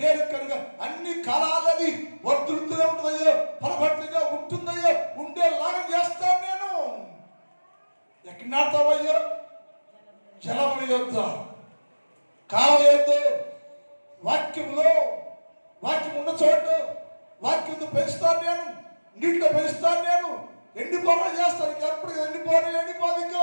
అన్ని కాలాలది వర్ధులుతూనే ఉంటుందయ్యా, ఫలభర్తిగా ఉంటుందయ్యా, ఉండేలాగా చేస్తాను నేను. ఎక్కడ నాటావయ్యా? జలముల యొద్ద, కాలువ యొద్ద, వాక్యంలో, వాక్యం ఉన్న చోట వాక్యంతో పెంచుతాను నేను, నీటిలో పెంచుతాను నేను. ఎండిపోవడం చేస్తాను, ఎప్పుడు ఎండిపోదు,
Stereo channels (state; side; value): inverted; both; correlation -1.00